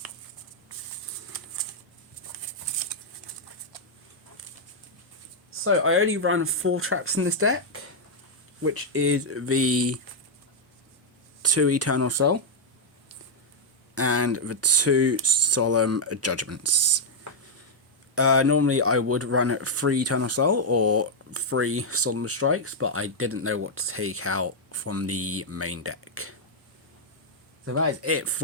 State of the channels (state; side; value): normal; both; correlation -0.03